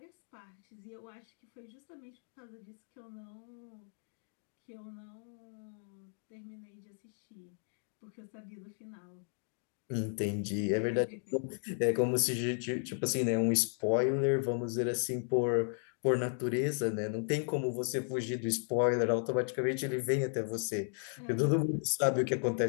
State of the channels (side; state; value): right; silent; 54 dB below the other